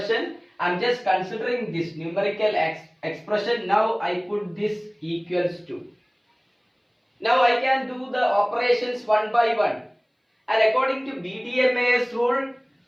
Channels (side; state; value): both; identical; correlation 1.00